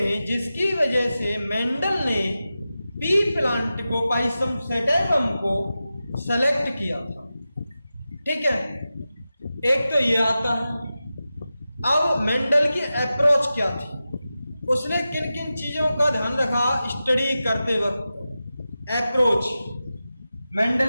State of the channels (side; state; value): both; inverted; correlation -0.93